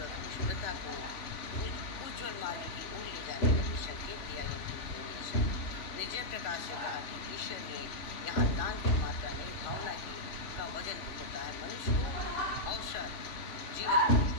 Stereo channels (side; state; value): right; late; 3.5 ms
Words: उस वृद्धा को उज्ज्वल मार्ग की ओर ले जाने लगे। संकेत दिया। यमदूतों उन्होंने जयप्रकाश से कहा कि ईश्वर ने यहाँ दान की मात्रा नहीं, भावना की का वजन होता है। मनुष्य को अवसर जीवन